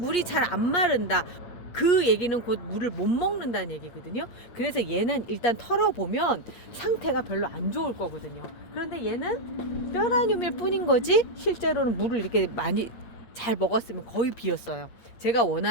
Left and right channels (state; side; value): late; right; 8.4 ms